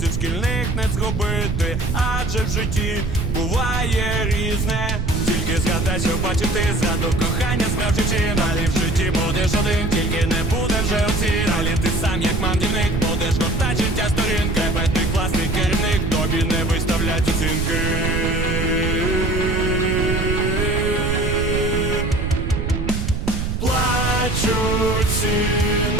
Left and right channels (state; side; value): noise; right; rumble, 1 dB below the sound